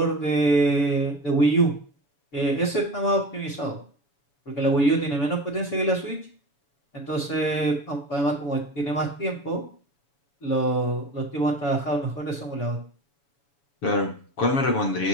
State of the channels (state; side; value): late; right; 7.1 ms